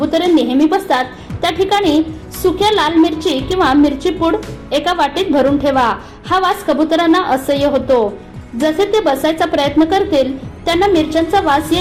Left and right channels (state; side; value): identical; both; correlation 1.00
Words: नेहमी बसतात त्या ठिकाणी सुक्या लाल मिरची किंवा मिरची पूड एका वाटीत भरून ठेवा. हा वास कबुतरांना असह्य होतो. जसे ते बसायचा प्रयत्न करतील त्यांना मिरच्यांचा वास